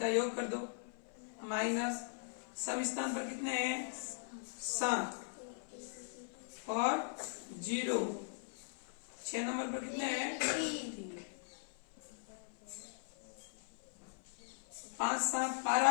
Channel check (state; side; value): silent; right; 51 dB below the other